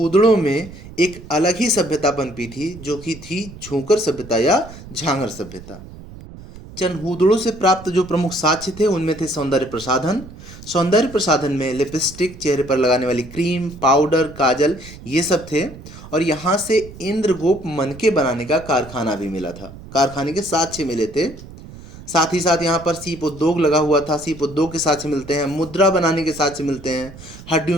में एक अलग ही सभ्यता पनपी थी, जो कि थी झूंकर सभ्यता या झांगर सभ्यता। चनहूदड़ों से प्राप्त जो प्रमुख साक्ष्य थे उनमें थे सौंदर्य प्रसाधन। सौंदर्य प्रसाधन में लिपस्टिक, चेहरे पर लगाने वाली क्रीम, पाउडर, काजल, ये सब थे। और यहाँ से इंद्रगोप मनके बनाने का कारखाना भी मिला था, कारखाने के साक्ष्य मिले थे। साथ ही साथ यहाँ पर सीप उद्योग लगा हुआ था, सीप उद्योग के साक्ष्य मिलते हैं। मुद्रा बनाने के साक्ष्य मिलते हैं।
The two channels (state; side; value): noise; right; rumble, 16 dB below the sound